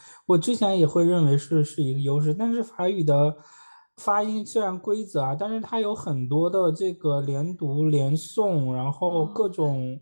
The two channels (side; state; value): both; inverted; correlation -1.00